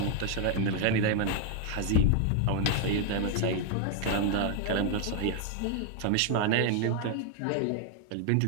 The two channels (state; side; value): different; both; correlation 0.00